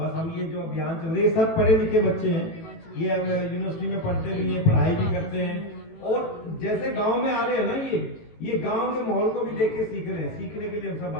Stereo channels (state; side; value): late; right; 18 ms